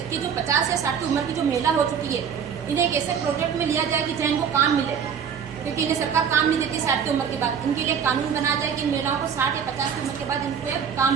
कि जो 50 या 60 की उम्र की जो महिला हो चुकी है, इन्हें एक ऐसे प्रोजेक्ट में लिया जाए कि जहाँ इनको काम मिले, क्योंकि इन्हें सरकार काम नहीं देती 60 की उम्र के बाद। इनके लिए कानून बनाया जाए कि इन महिलाओं को 60 या 50 की उम्र के बाद इनको एक काम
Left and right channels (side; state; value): left; quieter; 7.4 dB